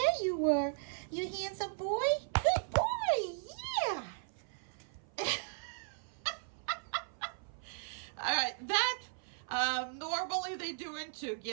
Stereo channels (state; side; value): silent; left; 53 dB below the other